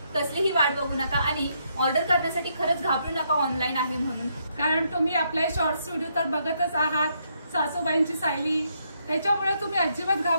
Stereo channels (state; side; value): inverted; both; correlation -0.75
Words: कसलीही वाट बघू नका आणि ऑर्डर करण्यासाठी खरंच घाबरू नका ऑनलाईन आहे म्हणून. कारण तुम्ही आपले शॉर्ट्स व्हिडिओ तर बघतच आहात, सासूबाईंची सायली. त्याच्यामुळे तुम्ही अजिबात